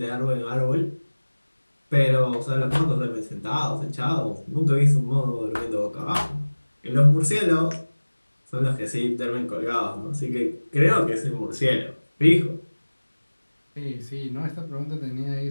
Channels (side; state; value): both; inverted; correlation -1.00